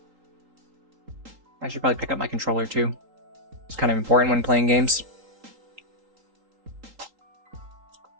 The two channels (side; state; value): left; late; 3.8 ms